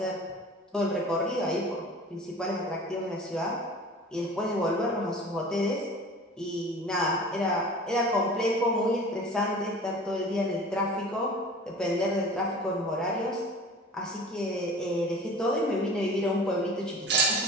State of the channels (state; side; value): normal; both; correlation 0.41